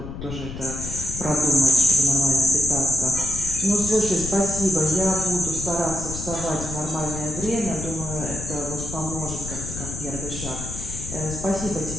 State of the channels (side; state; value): left; noise; rumble, 9 dB below the sound